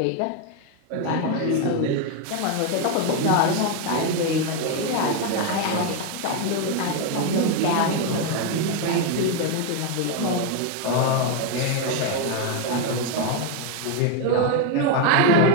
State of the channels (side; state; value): both; different; correlation 0.01